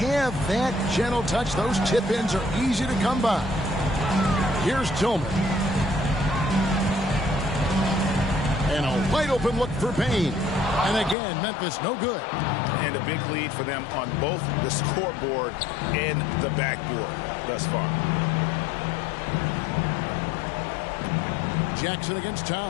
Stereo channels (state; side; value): drops out; right; at 11.2 s